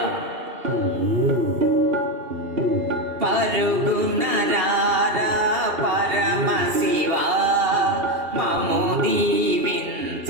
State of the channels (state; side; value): late; left; 2.7 ms